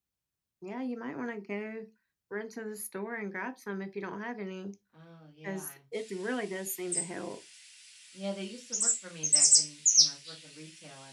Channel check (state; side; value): identical; both; correlation 1.00